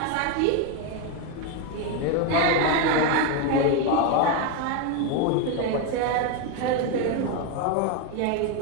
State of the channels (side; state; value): both; different; correlation 0.02